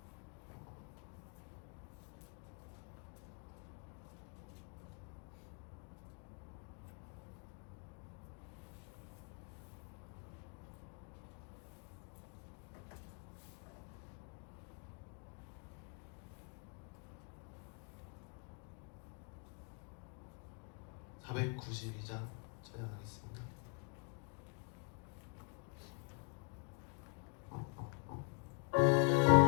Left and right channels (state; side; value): quieter; right; 39.8 dB